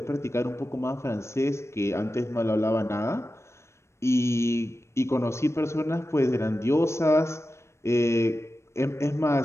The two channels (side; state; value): right; late; 0.13 ms